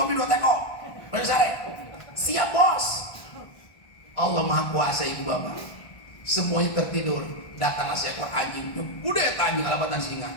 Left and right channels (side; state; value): right; late; 1.5 ms